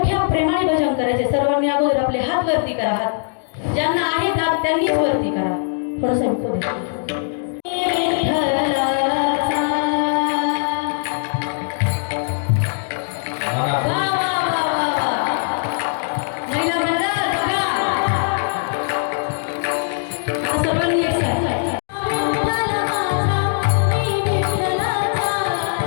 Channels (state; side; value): silent; right; digital silence